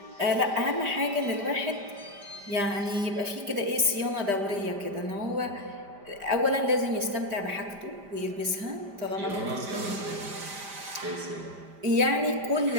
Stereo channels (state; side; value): late; left; 5.0 ms